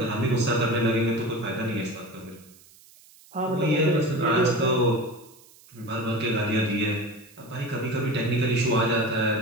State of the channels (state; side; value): noise; right; hiss, 25 dB below the sound